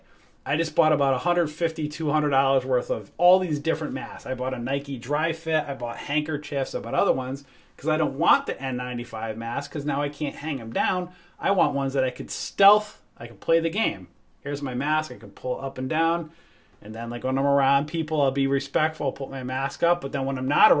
I just bought about $150, $200 worth of all these different masks. I bought a Nike Dry Fit. I bought handkerchiefs. I bought other ones because I don't want the N95 mask because now I can't hang them down. I want ones that I could stealth. I can play the game. Here's my mask. I can pull up and down. And then like when I'm around people, I'll be respectful. I'll put my mask up. But then when I'm not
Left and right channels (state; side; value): identical; both; correlation 1.00